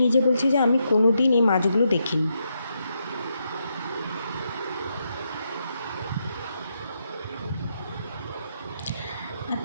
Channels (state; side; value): inverted; both; correlation -0.81